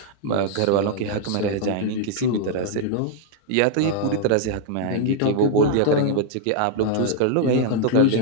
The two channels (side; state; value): both; different; correlation -0.01